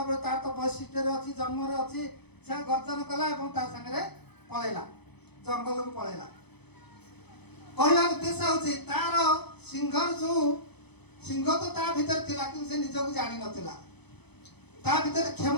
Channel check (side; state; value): right; late; 0.98 ms